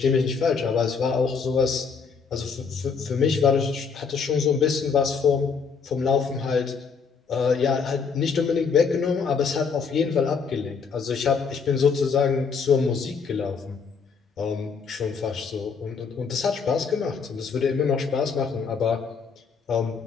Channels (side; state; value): right; quieter; 5.6 dB